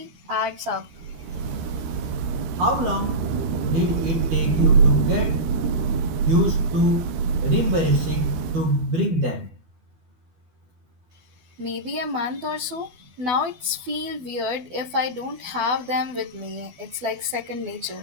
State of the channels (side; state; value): left; late; 12 ms